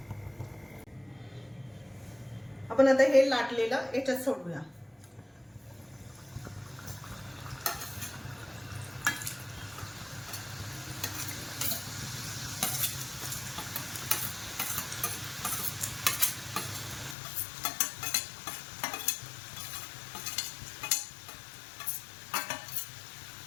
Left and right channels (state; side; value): drops out; right; at 17.2 s